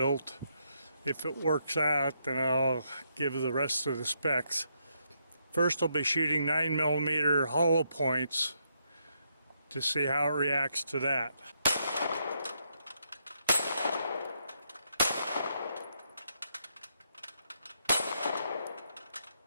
If it works out, then I'll give the rest of the specs. First, I'll be shooting 9mm hollow points to see how it reacts to that.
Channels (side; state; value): both; inverted; correlation -0.77